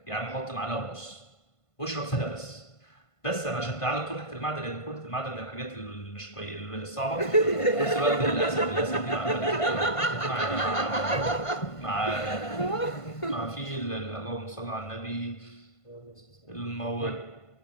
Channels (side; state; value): right; late; 1.5 ms